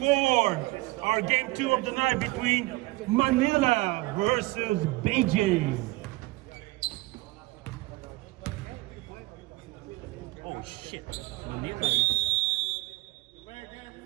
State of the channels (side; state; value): left; quieter; 21.5 dB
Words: our game 2 of the night between Manila versus Beijing. Oh shit, Manila.